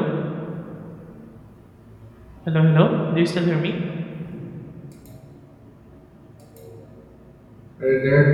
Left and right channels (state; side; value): identical; both; correlation 1.00